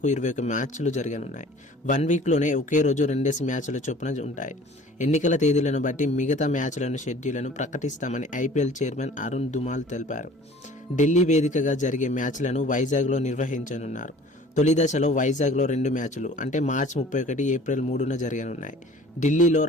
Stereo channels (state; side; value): normal; both; correlation 0.48